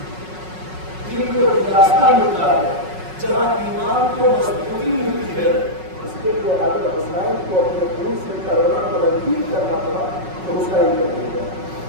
جہاں ایمان کو مضبوطی ملتی ہے اس کے لیے اگر حسین کو اپنے خون سے کرونا تبدیل کرنا پڑا تو حسین کر دے گا.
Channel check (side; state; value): left; late; 5.4 ms